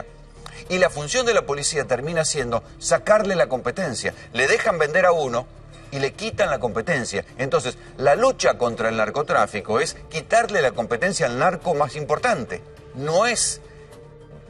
Y la función de la policía termina siendo sacarle la competencia. Le dejan vender a uno y le quitan la competencia. Entonces, la lucha contra el narcotráfico es quitarle la competencia al narco más importante. No es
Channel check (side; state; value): both; identical; correlation 1.00